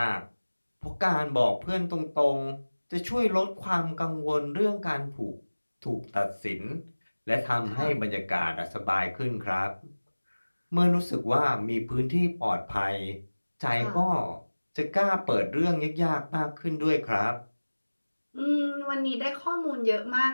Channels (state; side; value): inverted; both; correlation -1.00